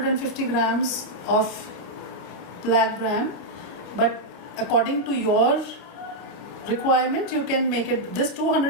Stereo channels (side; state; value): right; late; 29 ms